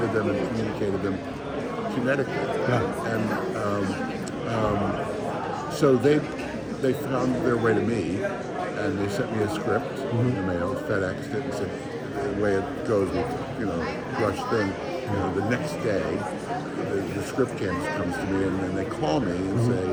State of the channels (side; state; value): both; identical; correlation 1.00